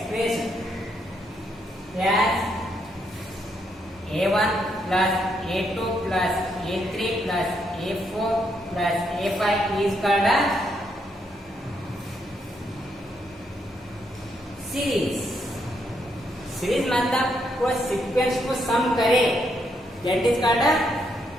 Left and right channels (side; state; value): both; normal; correlation 0.77